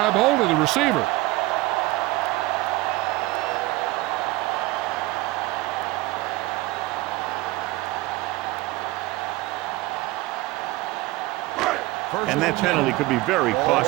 hold of the receiver. And that penalty could be very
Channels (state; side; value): quieter; left; 19.5 dB